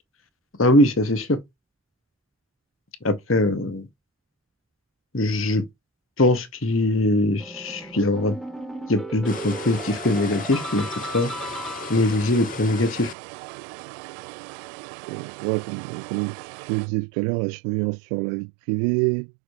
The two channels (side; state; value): left; drops out; at 13.2 s